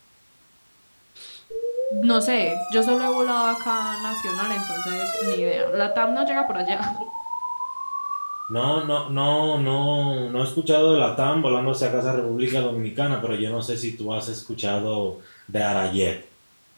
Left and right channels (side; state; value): both; inverted; correlation -1.00